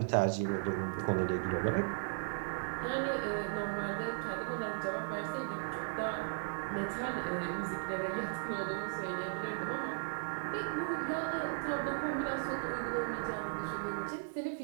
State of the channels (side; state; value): left; silent; 53 dB below the other